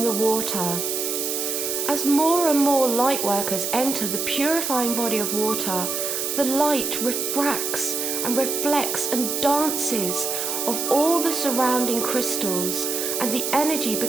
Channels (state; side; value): noise; right; hiss, 2 dB below the sound